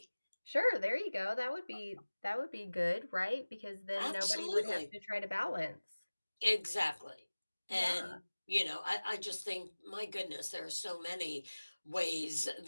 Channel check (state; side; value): inverted; both; correlation -1.00